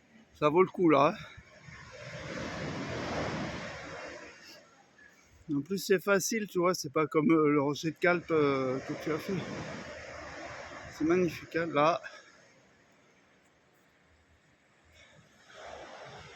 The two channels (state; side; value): identical; both; correlation 1.00